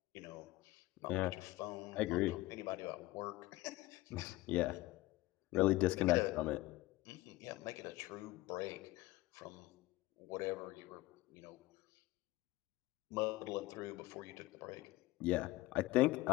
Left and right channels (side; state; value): right; quieter; 18.5 dB